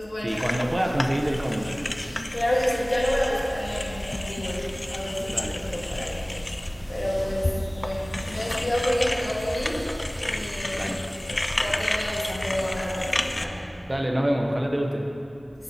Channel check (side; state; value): both; normal; correlation 0.98